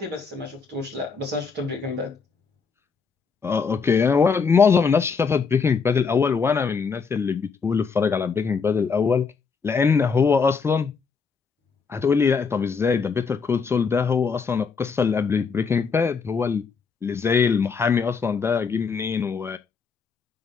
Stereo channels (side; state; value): right; quieter; 5.4 dB